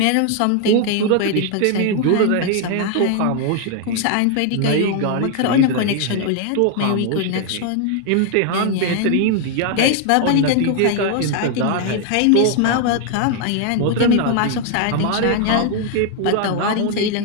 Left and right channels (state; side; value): different; both; correlation 0.00